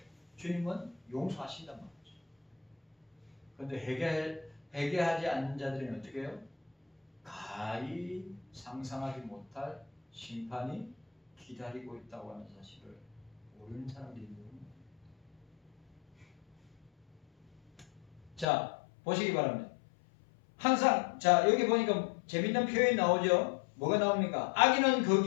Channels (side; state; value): right; drops out; at 18.4 s